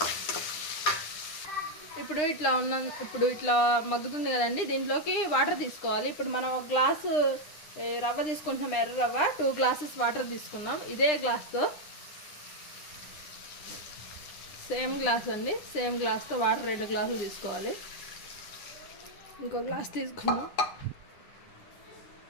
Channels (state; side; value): late; right; 9.9 ms